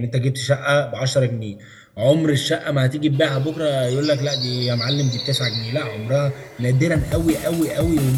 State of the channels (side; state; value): both; identical; correlation 1.00